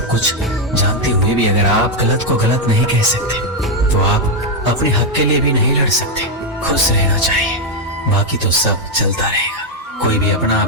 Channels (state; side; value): normal; both; correlation 0.02